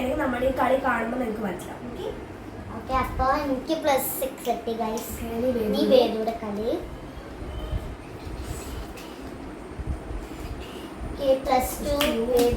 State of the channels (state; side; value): identical; both; correlation 1.00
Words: നമ്മുടെ ഈ കളി കാണുമ്പോൾ നിങ്ങൾക്ക് മനസ്സിലാവും. ഓക്കെ അപ്പൊ എനിക്ക് +6 കിട്ടി ഗൈസ്. നീ വേദുടെ കളി. +2